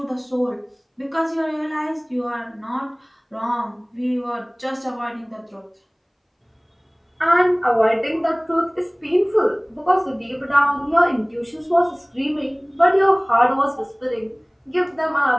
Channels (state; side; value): identical; both; correlation 1.00